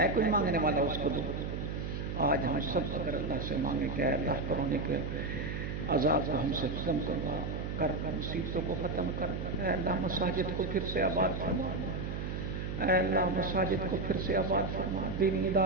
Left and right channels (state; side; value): noise; right; hum, 4 dB below the sound